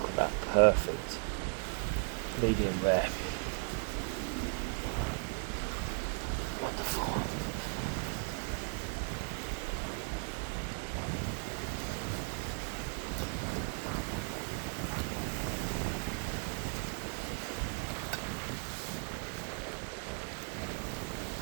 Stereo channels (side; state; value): left; quieter; 40.0 dB